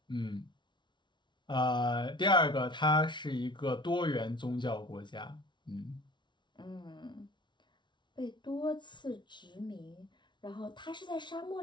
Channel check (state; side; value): late; right; 0.23 ms